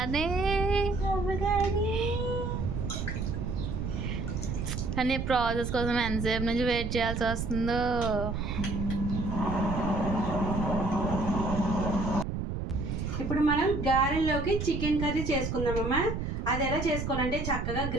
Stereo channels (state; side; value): noise; right; rumble, 3 dB below the sound